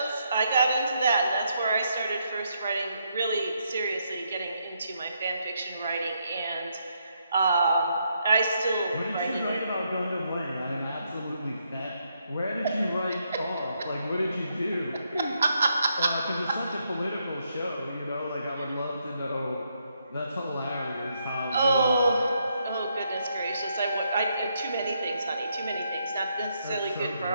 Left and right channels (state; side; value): inverted; both; correlation -0.77